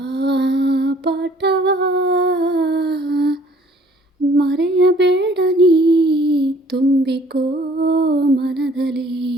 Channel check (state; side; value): normal; both; correlation 0.57